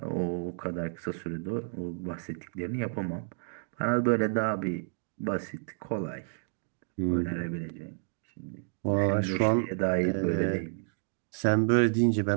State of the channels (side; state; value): left; silent; digital silence